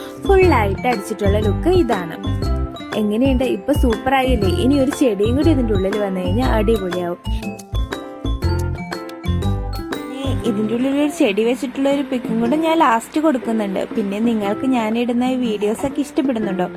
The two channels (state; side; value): identical; both; correlation 1.00